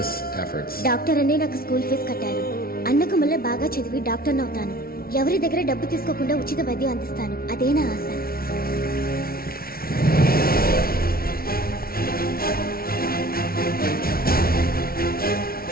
efforts. Doctor అనే నాకు స్కూల్ ఫీజు కట్టారు. అన్నకు మళ్ళీ బాగా చదివి డాక్టర్ అవుతాను. ఎవరి దగ్గర డబ్బు తీసుకోకుండా ఉచిత వైద్యం అందిస్తాను. అదే నా ఆశ.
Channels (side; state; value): right; late; 0.44 ms